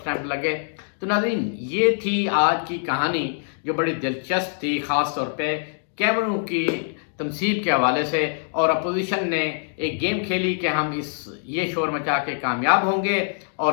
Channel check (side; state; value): right; silent; digital silence